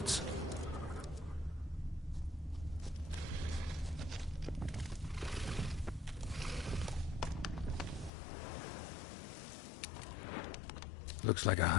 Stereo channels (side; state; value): right; drops out; at 8.1 s